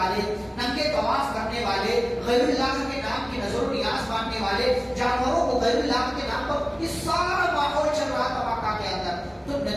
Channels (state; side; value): identical; both; correlation 1.00